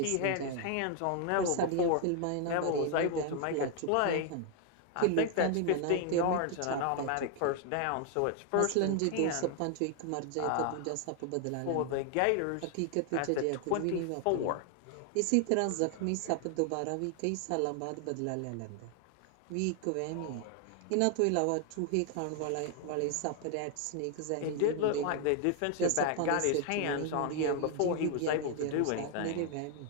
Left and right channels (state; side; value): different; both; correlation 0.00